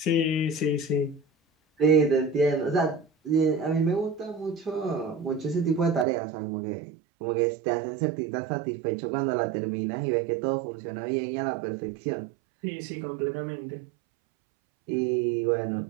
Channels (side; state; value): left; drops out; at 6.1 s